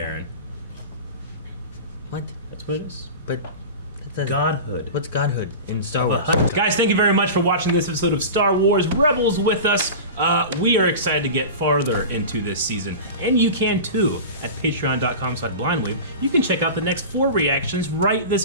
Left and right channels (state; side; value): inverted; both; correlation -0.31